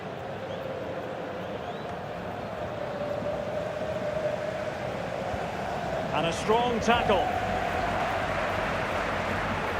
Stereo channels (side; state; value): both; identical; correlation 1.00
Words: And a strong tackle.